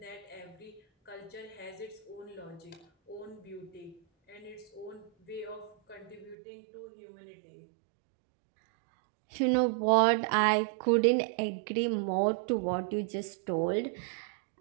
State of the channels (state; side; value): drops out; left; at 6.4 s